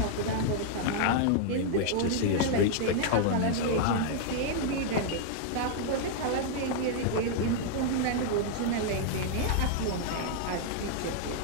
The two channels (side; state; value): both; different; correlation -0.01